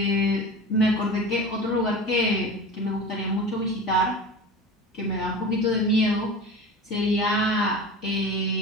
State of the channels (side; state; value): both; normal; correlation 0.33